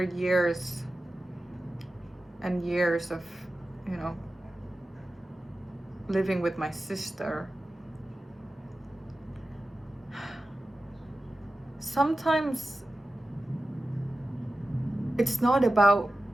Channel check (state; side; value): normal; both; correlation 0.94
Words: years and years of, living with my sister, sometimes it's not about